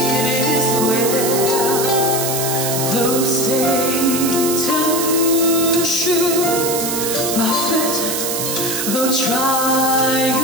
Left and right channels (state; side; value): noise; right; hiss, 2 dB below the sound